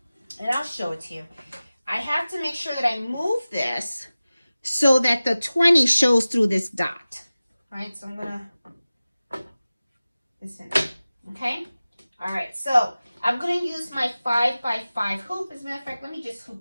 and I'll show it to you, I have to make sure that I move this so that the 20 shows through this dot. All right, so I'm going to, this in, okay? All right, so I'm going to use my 5x5 hoop. As a matter of fact, let me just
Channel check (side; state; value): both; inverted; correlation -0.97